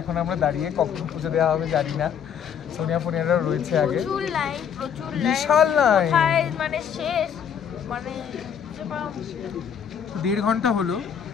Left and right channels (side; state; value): right; quieter; 8.0 dB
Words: আমরা দাঁড়িয়ে, কখন পুজো দেওয়া হবে জানি না। সোনিয়া ফোনিয়ারা রয়েছে আগে, প্রচুর বিশাল লাইন, মানে শেষ মানে 1.5 ঘন্টা হলো